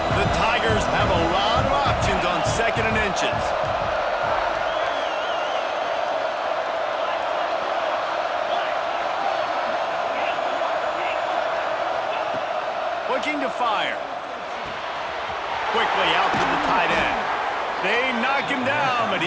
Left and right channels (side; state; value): both; identical; correlation 1.00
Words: The Tigers have a lot of options on 2nd and inches. Looking to fire. Quickly out to the tight end. They knock him down, but